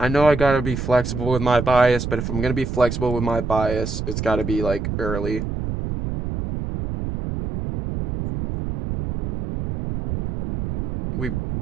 know I gotta be flexible with my bias, but if I'm gonna be flexible with my bias, it's gotta be like early. We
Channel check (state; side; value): noise; right; rumble, 4 dB below the sound